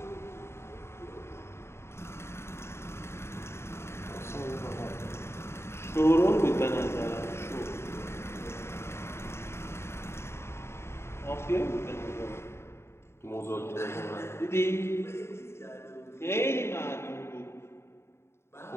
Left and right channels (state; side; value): late; right; 0.12 ms